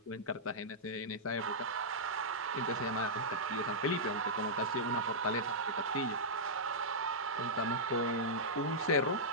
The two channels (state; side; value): normal; both; correlation -0.12